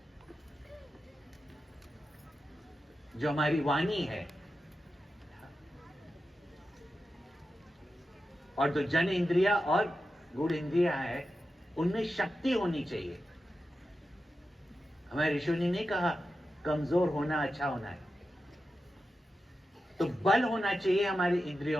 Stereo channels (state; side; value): normal; both; correlation 0.91